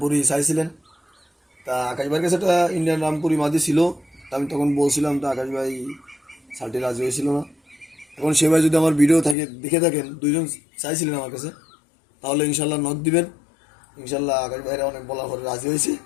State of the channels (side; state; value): right; drops out; at 9.3 s